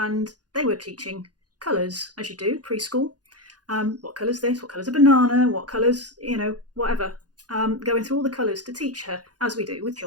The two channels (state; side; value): late; left; 0.69 ms